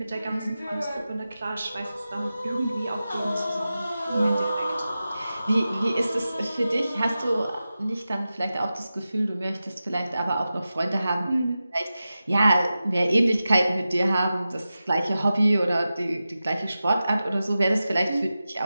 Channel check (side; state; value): both; inverted; correlation -0.93